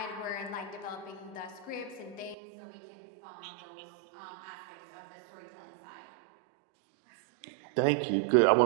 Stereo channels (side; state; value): left; drops out; at 2.4 s